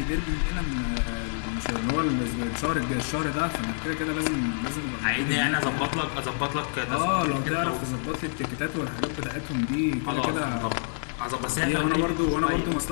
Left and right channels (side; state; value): right; silent; 60 dB below the other